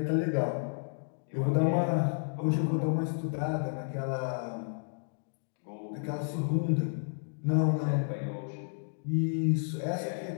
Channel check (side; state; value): right; silent; digital silence